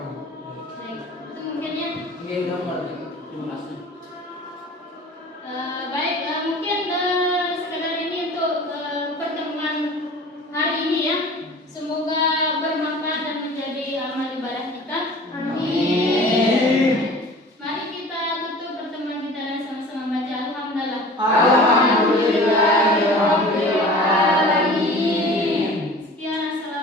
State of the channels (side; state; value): both; normal; correlation 0.42